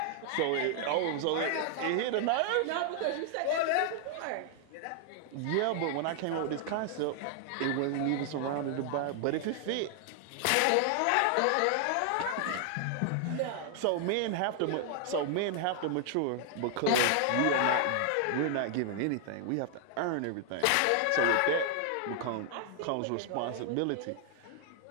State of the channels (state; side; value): different; both; correlation 0.00